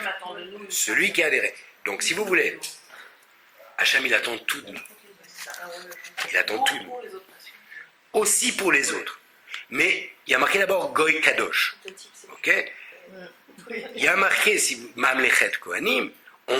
Celui qui a adhéré. Donc, si vous voulez, Hacham, il attend tout de nous. Il attend tout de nous. Aussi pour les autres. Mais il y a marqué d'abord Goy Kadosh. Ok ? Il y a marqué, si vous, Mamlechet Kohanim,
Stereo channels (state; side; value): identical; both; correlation 1.00